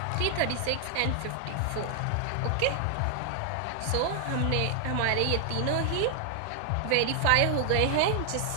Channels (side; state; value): both; different; correlation 0.00